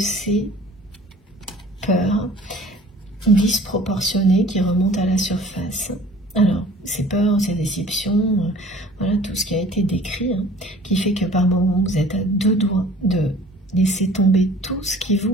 peurs disproportionnées qui remontent à la surface. Alors, ces peurs, ces déceptions, voilà tout ce qui a été décrit, hein, qui fait que par moments vous êtes à deux doigts de laisser tomber tout ce qui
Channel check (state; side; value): normal; both; correlation 0.48